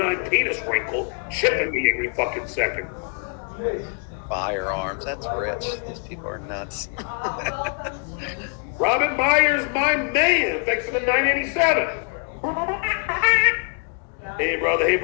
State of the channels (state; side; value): quieter; right; 39.4 dB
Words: penis wrinkle chipping me every fucking second. Firearms. That's rich. These people are nuts. Robin Myers, my man. Thanks for the 987. Hey, brother.